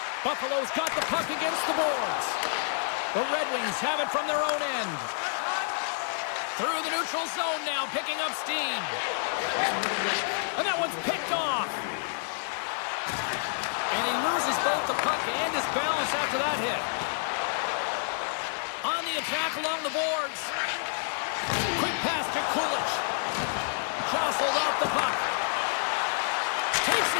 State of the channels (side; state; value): right; silent; digital silence